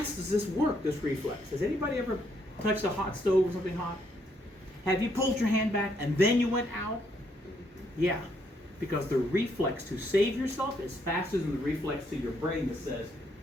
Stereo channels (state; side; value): normal; both; correlation 0.73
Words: does this work, this reflex? Has anybody ever touched a hot stove or something hot? Have you pulled your hand back and then you went out? Yeah. Because the reflex to save yourself is faster than the reflex to your brain that says,